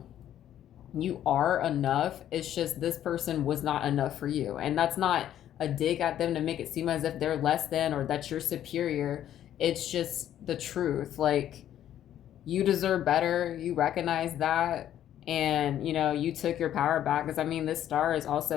you are enough. It's just this person was not enough for you. And that's not a dig at them to make it seem as if they're less than or that you're superior. It's just the truth. Like, you deserve better. You recognize that. And, you took your power back. Because, I mean, this star is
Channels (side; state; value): right; quieter; 11.2 dB